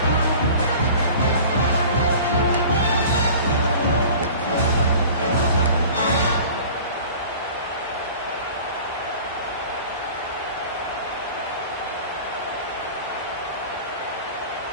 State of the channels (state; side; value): inverted; both; correlation -0.42